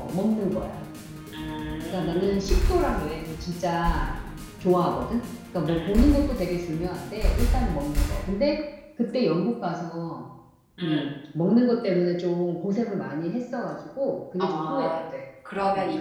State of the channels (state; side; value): identical; both; correlation 1.00